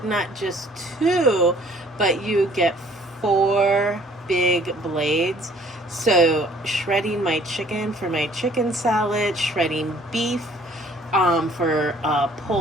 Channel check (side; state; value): both; normal; correlation 0.57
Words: not just 2, but you get 4 big blades. So shredding my chicken for my chicken salad, shredding beef for